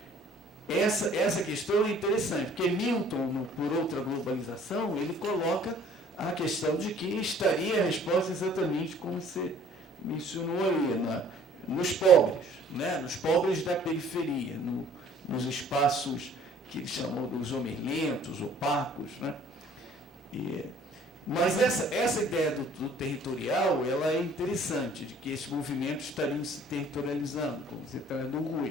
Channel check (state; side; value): normal; both; correlation 0.55